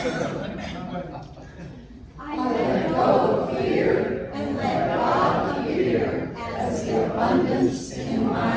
I let go of fear and let God appear as the abundance in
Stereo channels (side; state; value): both; identical; correlation 1.00